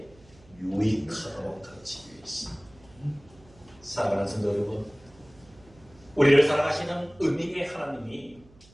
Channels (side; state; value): right; noise; hum, 25 dB below the sound